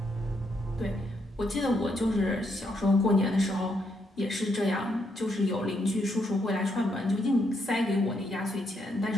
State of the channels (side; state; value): both; normal; correlation 0.77